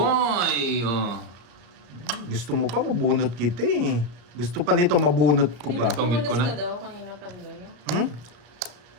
Oh. Gusto mo pa, mabunot kita eh. Gusto pa nito, mabunot ko pa. Tungit ko na. Ka daw kanina pa doon. Hmm?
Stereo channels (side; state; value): left; late; 34 ms